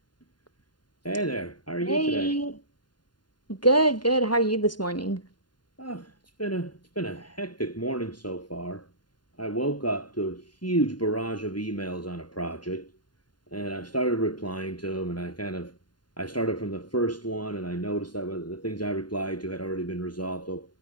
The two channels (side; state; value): right; late; 0.71 ms